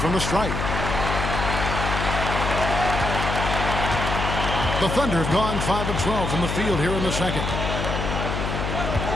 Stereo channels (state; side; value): noise; left; hum, 2 dB below the sound